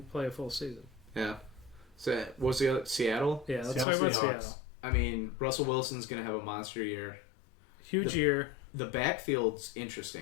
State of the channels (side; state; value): right; drops out; at 3.9 s